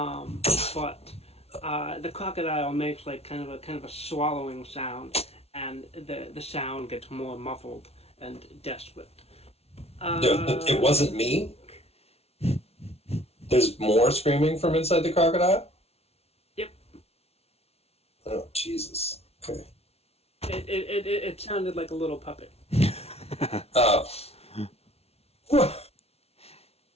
the crocodile makes like kind of a swallowing sound, and the sound gets more muffled and desperate. It wasn't me. There's more screaming from inside the crocodile? Yep. Oh, Jesus. Okay. It sounded like a little puppet. Oh.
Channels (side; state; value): right; late; 0.30 ms